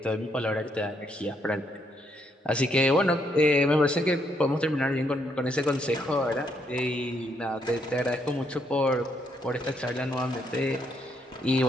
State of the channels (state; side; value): normal; both; correlation 0.74